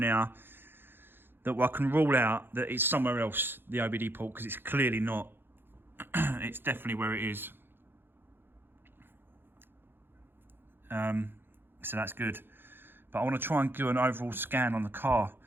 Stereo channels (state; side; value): late; left; 0.10 ms